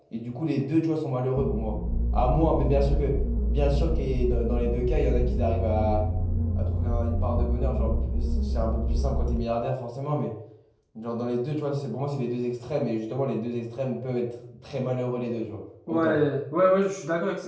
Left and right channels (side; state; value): both; identical; correlation 1.00